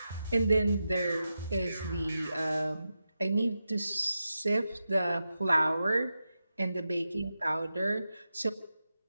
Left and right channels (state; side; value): inverted; both; correlation -0.90